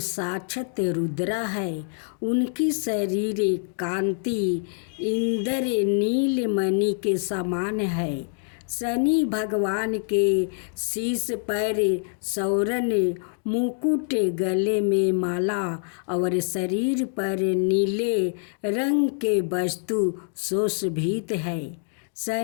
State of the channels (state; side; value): silent; right; digital silence